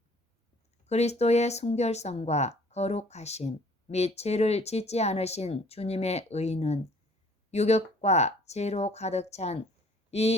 그리스도의 순결성과 거룩하심 및 죄를 짓지 않으신 주님의 의는 유격과 죄로 가득 찬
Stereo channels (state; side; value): normal; both; correlation 0.56